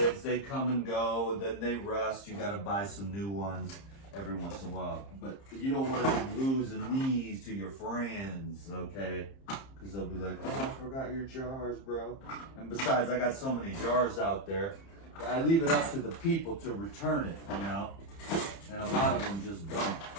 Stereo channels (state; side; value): late; right; 30 ms